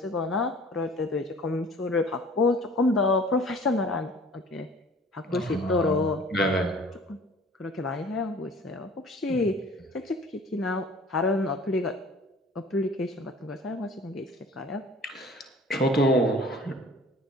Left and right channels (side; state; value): both; normal; correlation 0.48